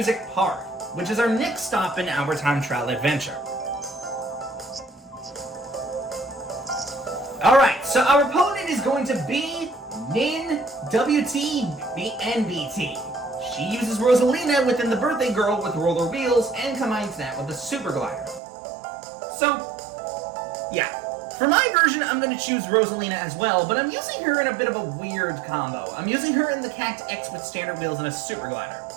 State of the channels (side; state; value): left; drops out; at 18.4 s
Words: Park, which is our next stop in our time trial adventure. Alright, so our opponent is going to be Nin WTNBT. She uses Rosalina within the Birthday Girl with roller wheels and combines that with a super glider. So, yeah. For my version, I'm going to choose Rosalina as well, but I'm using her in a bit of a weird combo. I'm using her in the Cacti X with standard wheels and a super glider.